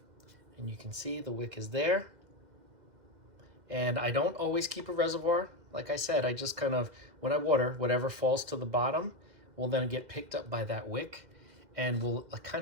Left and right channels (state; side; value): late; left; 2.1 ms